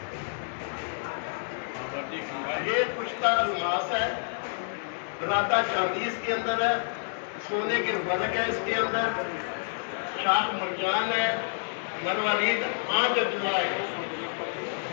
یہ کشتہ الماس ہے، براتا چاندی اس کے اندر ہے، سونے کے ورق ہے اس کے اندر، شاخ مرجان ہے، مروارید آنکھ دعا ہے.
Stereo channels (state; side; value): silent; right; digital silence